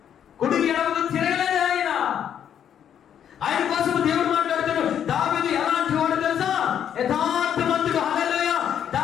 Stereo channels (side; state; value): right; quieter; 9.2 dB